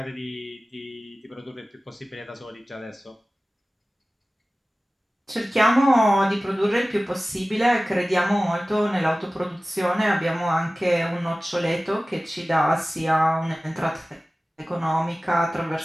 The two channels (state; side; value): normal; both; correlation 0.97